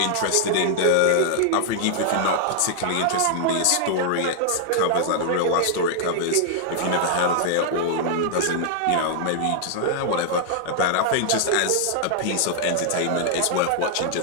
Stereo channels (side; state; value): both; different; correlation -0.01